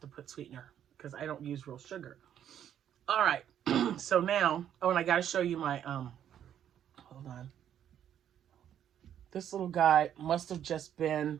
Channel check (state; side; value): quieter; left; 9.9 dB